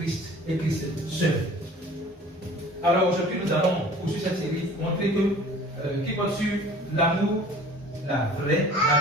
et Christ seul. Alors aujourd'hui, nous allons poursuivre cette série, montrer que qui porte sur l'amour, la vraie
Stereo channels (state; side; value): normal; both; correlation 0.47